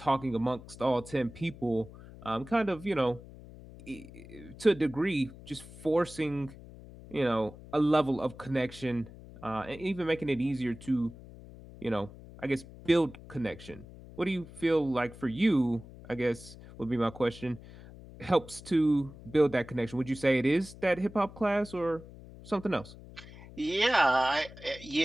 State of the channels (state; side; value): noise; left; hum, 17 dB below the sound